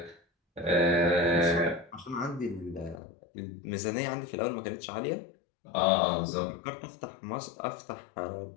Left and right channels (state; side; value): drops out; right; at 3.0 s